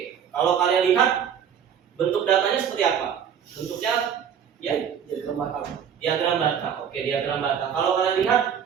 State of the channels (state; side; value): quieter; left; 8.1 dB